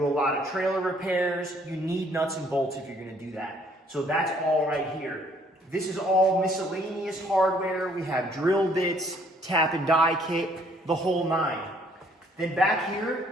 a lot of trailer repairs. You need nuts and bolts if you're gonna do that. So that's all right here. This is all miscellaneous hardware. We have drill bits, tap and die kit, the whole nine. Then back here,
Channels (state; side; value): normal; both; correlation 0.63